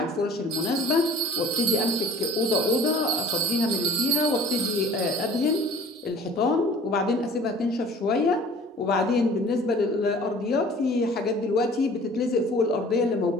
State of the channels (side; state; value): both; normal; correlation 0.48